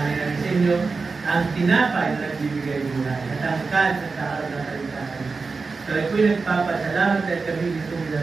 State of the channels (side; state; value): left; quieter; 4.3 dB